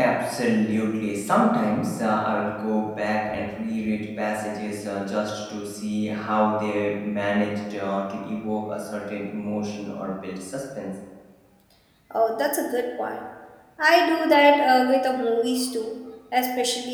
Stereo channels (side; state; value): both; identical; correlation 1.00